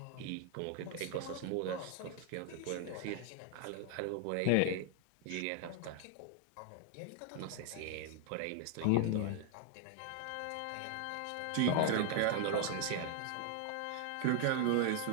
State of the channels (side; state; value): both; different; correlation 0.00